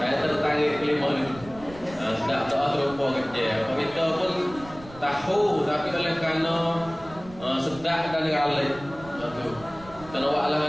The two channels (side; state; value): right; noise; rumble, 18 dB below the sound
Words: Saya tertangis kelima ni. Sedap doa terlupa kerja. Kita pun tahu, tapi oleh kerana sedap dan galak. Itu.